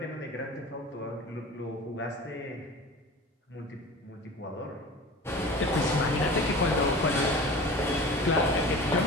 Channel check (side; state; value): both; normal; correlation 0.37